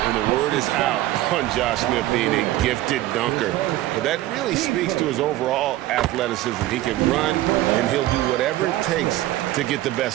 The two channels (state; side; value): quieter; left; 15.5 dB